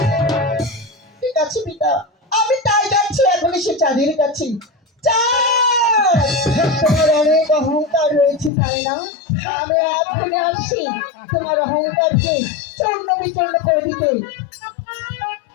ঠিক আছে পিতা, আমি তাই যাচ্ছি এখনই সে চাঁদের কাছে। চাঁদ, তোমার অনেক অহংকার রয়েছে তাই না? আমি এখনই আসছি তোমার অহংকারকে চূর্ণ বিচূর্ণ করে দিতে।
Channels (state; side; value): drops out; right; at 8.5 s